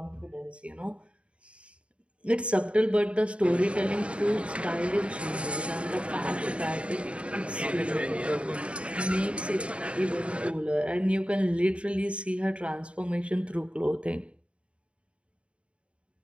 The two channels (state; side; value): late; left; 0.060 ms